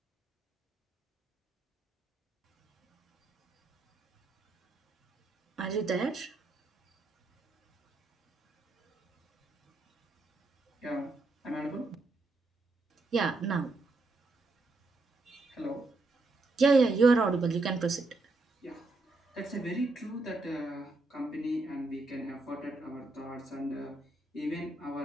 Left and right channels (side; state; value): left; quieter; 3.2 dB